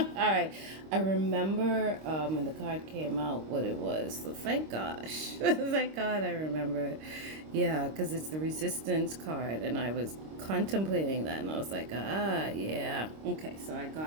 right. I remember when the card came out what it was. So thank gosh. Thank God I remember it. Yeah, because it's the resistance card. And I was contemplating that. And I was like, yeah. Okay, so I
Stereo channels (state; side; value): late; left; 26 ms